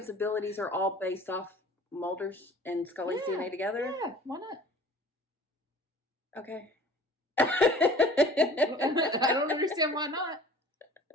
abilities are all based off Mulder's and Scully's Yeah, DNA together? Yeah, why not? Okay. I don't understand why not.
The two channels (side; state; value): both; normal; correlation 0.47